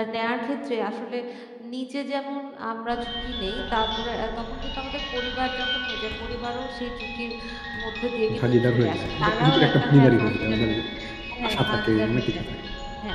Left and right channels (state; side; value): identical; both; correlation 1.00